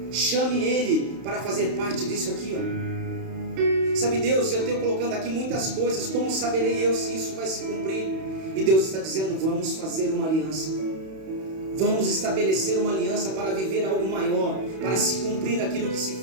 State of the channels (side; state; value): left; late; 31 ms